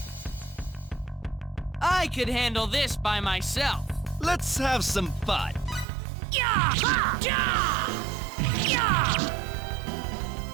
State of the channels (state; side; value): drops out; left; at 5.9 s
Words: I could handle this by myself. Let's have some fun. Yeah! Yeah! Yeah!